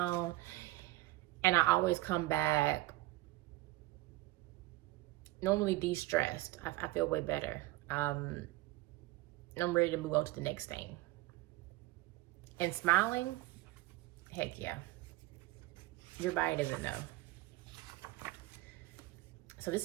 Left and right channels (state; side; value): quieter; left; 18.7 dB